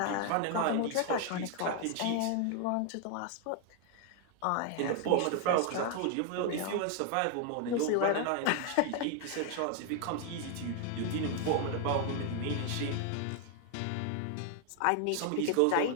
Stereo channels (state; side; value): different; both; correlation 0.00